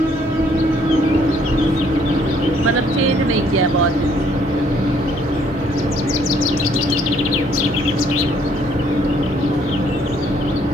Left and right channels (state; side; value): normal; both; correlation 0.64